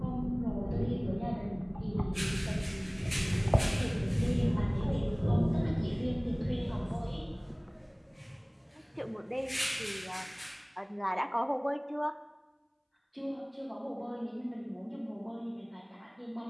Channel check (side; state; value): both; identical; correlation 1.00